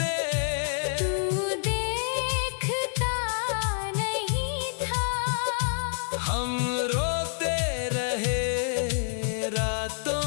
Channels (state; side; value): silent; right; digital silence